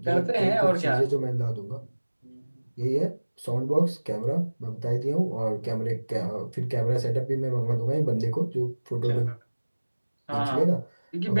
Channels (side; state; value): both; inverted; correlation -1.00